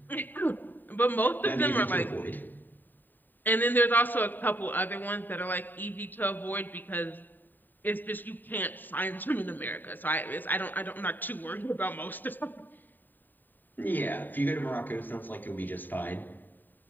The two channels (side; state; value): right; late; 0.090 ms